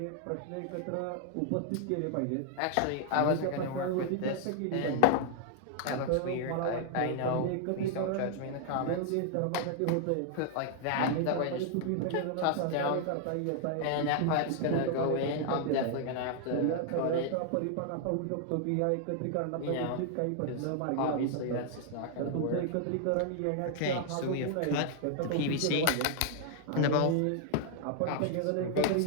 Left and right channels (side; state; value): both; different; correlation 0.00